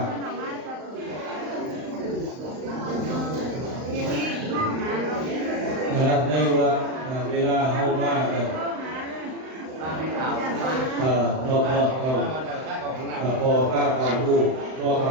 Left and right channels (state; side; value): late; left; 39 ms